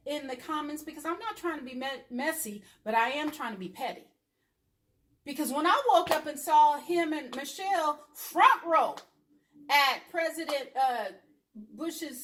in the comments, because I'm not trying to be messy, but I am trying to be petty. Because when I woke up and saw him and Michelle front row at President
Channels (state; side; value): identical; both; correlation 1.00